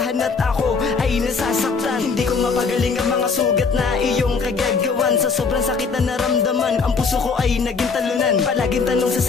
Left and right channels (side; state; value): right; quieter; 5.0 dB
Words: at ako ay nasasaktan. Hindi ko mapagaling ang mga sugat na iyong kagagawan. Sa sobrang sakit na naramdaman, ang puso ko ay naging talunan. Palaging tanong